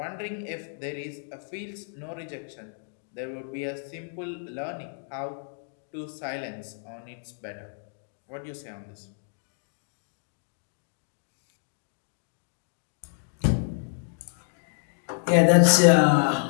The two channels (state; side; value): silent; right; digital silence